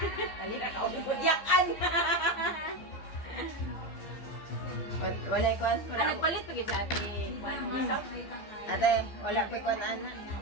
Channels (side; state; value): right; late; 15 ms